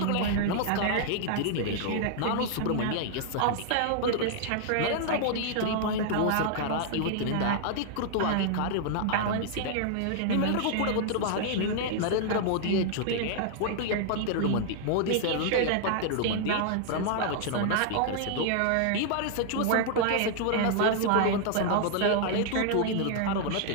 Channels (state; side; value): different; both; correlation -0.01